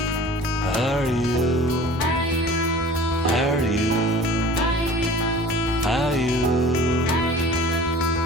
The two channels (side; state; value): both; normal; correlation 0.43